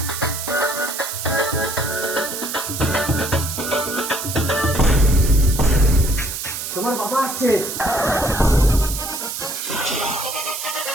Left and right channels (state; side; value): noise; right; hiss, 6 dB below the sound